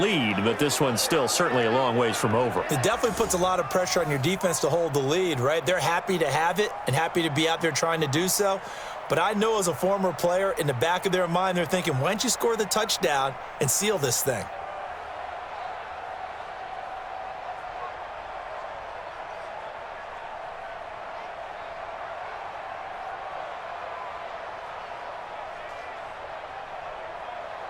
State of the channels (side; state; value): both; identical; correlation 1.00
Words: but this one's still certainly a long ways from over. It definitely puts a lot of pressure on your defense to hold the lead, right? They're happy to have it and happy to be out there trying to do so. But I know as a former player, in the back of their mind, they're thinking, why don't you score the touchdown and seal this thing?